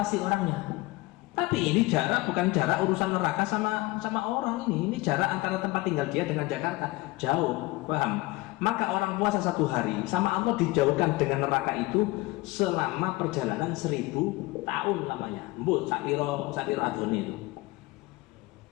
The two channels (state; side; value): quieter; right; 21.2 dB